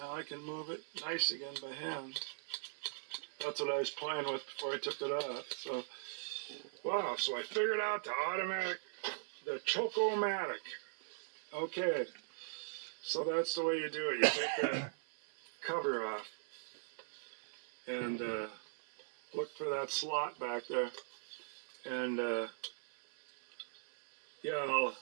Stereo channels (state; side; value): silent; left; 51 dB below the other